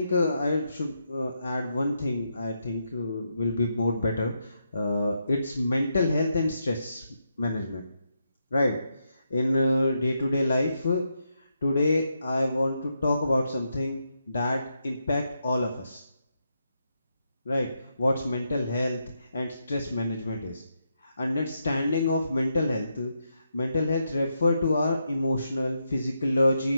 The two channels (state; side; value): inverted; both; correlation -0.82